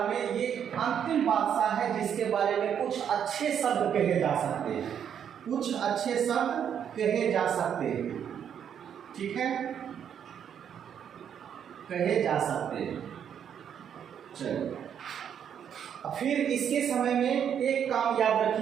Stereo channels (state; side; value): quieter; left; 8.6 dB